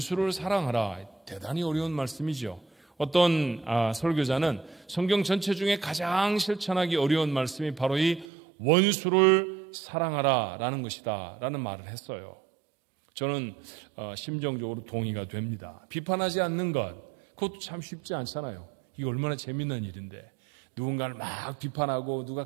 사랑하라, 대단히 어려운 말씀이죠. 어떤 설교자는 성경 전체 중에 가장 실천하기 어려운 말씀이 바로 이 원수를 사랑하라 라는 것이다 라는 말을 했어요. 저는 심정적으로 동의가 됩니다. 비판하지 않는 것, 그것도 참 쉽지 않잖아요. 이게 얼마나 재밌는 일인데 누군가를 막 비판하고 누가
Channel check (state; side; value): drops out; left; at 8.2 s